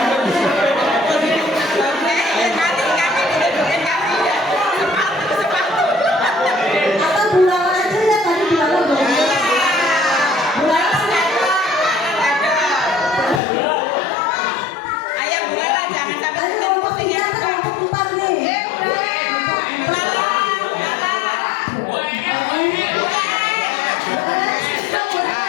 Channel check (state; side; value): drops out; right; at 13.4 s